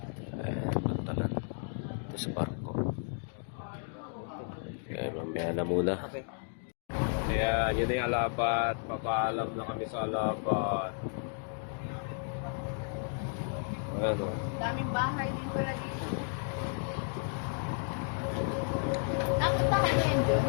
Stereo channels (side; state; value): right; silent; 56 dB below the other